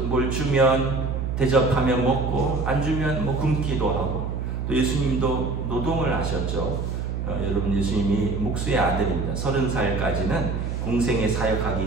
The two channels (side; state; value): right; noise; hum, 2 dB below the sound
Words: 뭘 주면 대접하면 먹고 안 주면 뭐 굶기도 하고. 또 예수님도 노동을 하셨죠. 여러분, 예수님이 목수의 아들입니다. 30살까지는 공생에